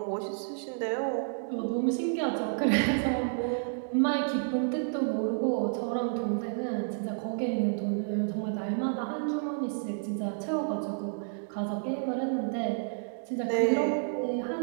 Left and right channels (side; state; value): left; silent; digital silence